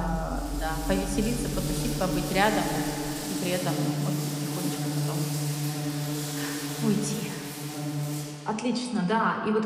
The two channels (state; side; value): identical; both; correlation 1.00